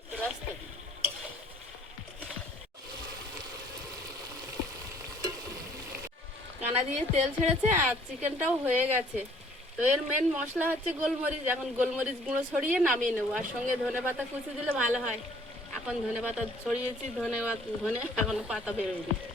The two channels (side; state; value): both; normal; correlation 0.58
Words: কানা দিয়ে তেল ছেড়েছে আর চিকেনটাও হয়ে গেছে। তো এর মেন মশলা হচ্ছে গোলমরিচ। এখন গোলমরিচ গুঁড়ো ছড়িয়ে নামিয়ে নেবো, আর সঙ্গে ধনেপাতা কুচি দিলে ভালো হয়। এখন ধনেপাতা ছড়িয়েছি, ধনে এখনো পাতা বেরোয়নি।